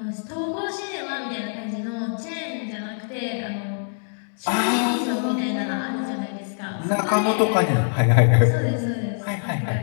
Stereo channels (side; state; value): right; silent; digital silence